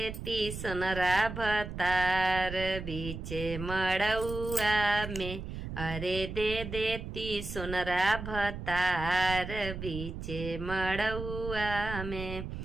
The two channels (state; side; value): noise; right; rumble, 8 dB below the sound